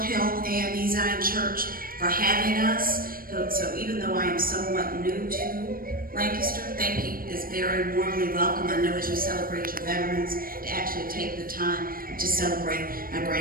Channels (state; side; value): late; left; 0.42 ms